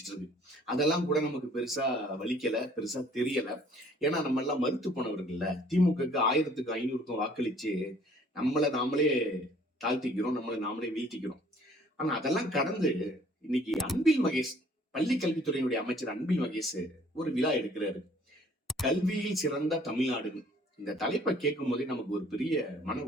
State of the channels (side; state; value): both; normal; correlation 0.57